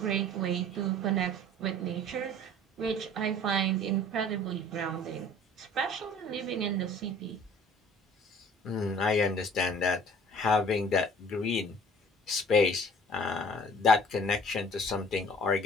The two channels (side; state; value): both; normal; correlation 0.49